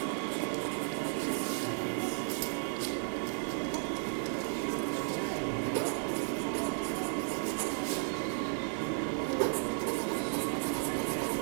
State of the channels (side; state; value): left; silent; digital silence